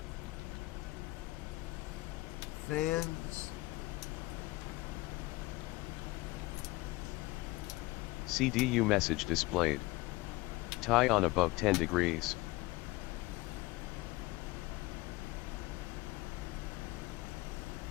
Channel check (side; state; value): right; quieter; 20.9 dB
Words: fans. CDU message displayed. Tie on above 10 degrees.